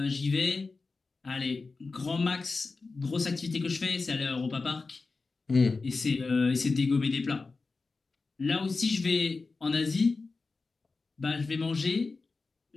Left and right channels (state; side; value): quieter; right; 4.0 dB